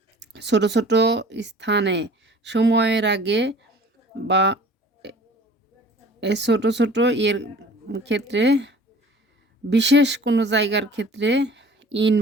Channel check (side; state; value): both; normal; correlation 0.47